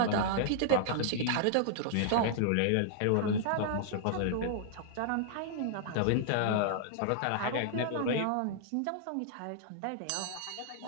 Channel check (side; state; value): both; different; correlation -0.01